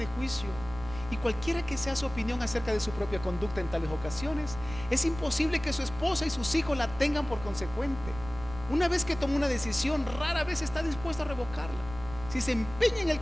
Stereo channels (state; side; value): noise; right; rumble, 13 dB below the sound